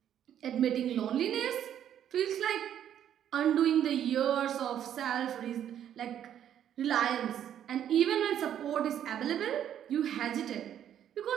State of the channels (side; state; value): left; quieter; 10.1 dB